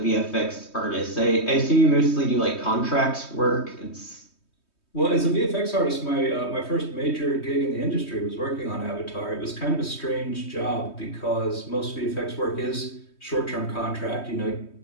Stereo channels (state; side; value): late; right; 3.2 ms